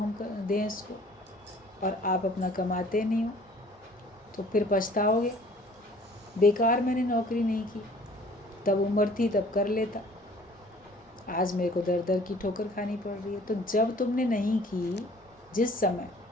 दें इसको, और आप अपना कमाते नहीं हो, तो फिर पछताओगे बेकार मैंने नौकरी नहीं की, तब उम्र थी तब कर लेता, आज मेरे को दर दर की ठोकर खानी पड़ रही है। तो जब तुमने नहीं की, जिस समय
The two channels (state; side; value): normal; both; correlation 0.53